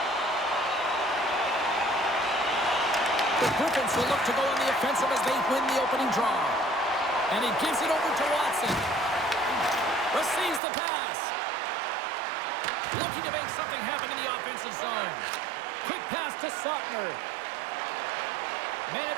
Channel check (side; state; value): left; drops out; at 10.6 s